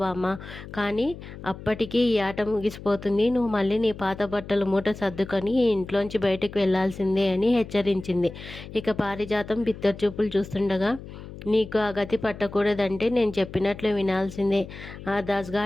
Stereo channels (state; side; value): noise; left; hum, 14 dB below the sound